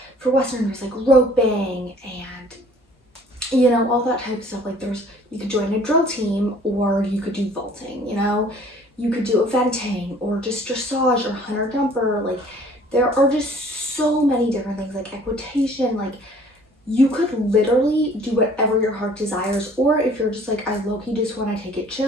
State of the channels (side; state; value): both; normal; correlation 0.54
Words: for Western, there's like roping and, you know, all that type of stuff. Like you could join a drill team, or you could do vaulting, you know, you could do eventing, or just dressage or hunter jumper. Like, there are just so many different things, like equitation. Like, you could literally do whatever your heart desires, or if you're just like, I low-key just want to take it